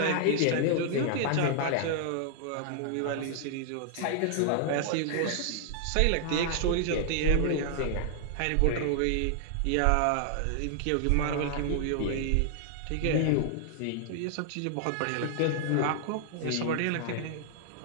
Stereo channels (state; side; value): different; both; correlation 0.00